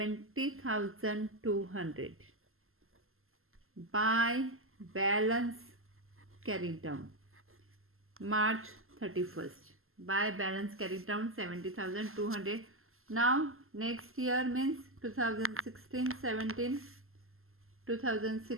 by balance carried down March 31st. By balance carried down 70,200. Now next year means 2016 17,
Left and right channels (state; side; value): late; left; 0.62 ms